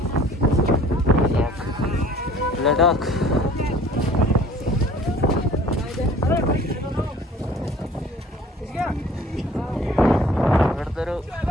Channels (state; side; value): normal; both; correlation 0.51